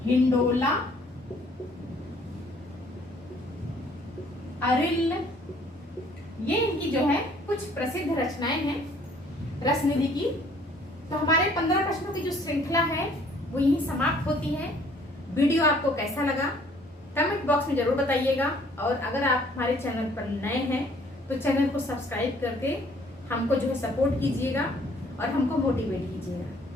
हिंडोला, अरिल, ये इनकी जो है कुछ प्रसिद्ध रचनाएं हैं रसनिधि की। तो हमारे 15 प्रश्नों की जो श्रृंखला है वो यहीं समाप्त होती है। वीडियो आपको कैसा लगा कमेंट बॉक्स में जरूर बताइएगा और अगर आप हमारे चैनल पर नए हैं तो चैनल को सब्सक्राइब करके हमको जो है सपोर्ट कीजिएगा और हमको मोटिवेट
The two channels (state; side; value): normal; both; correlation 0.59